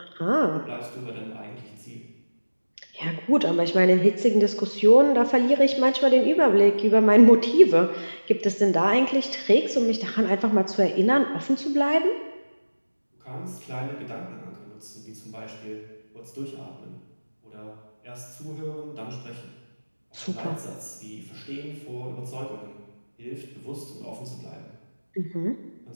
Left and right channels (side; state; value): both; inverted; correlation -1.00